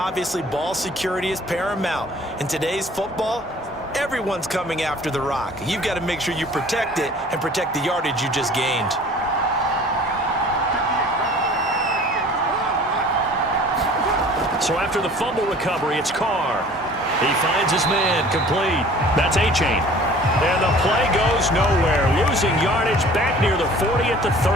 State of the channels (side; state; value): both; normal; correlation 0.48